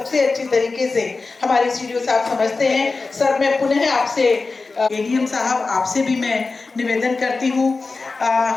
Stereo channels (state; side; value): quieter; right; 3.9 dB